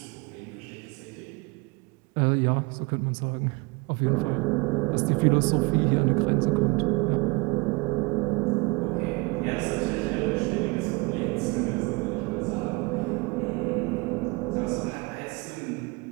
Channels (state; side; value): quieter; left; 27.5 dB